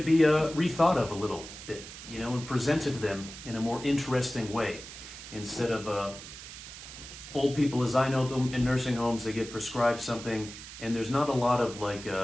be rethought of a little bit, and presented to them in a more interesting way. Instead of old people, as I know them in nursing homes, they get prescribed something and there's not a lot of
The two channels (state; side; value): noise; right; hiss, 13 dB below the sound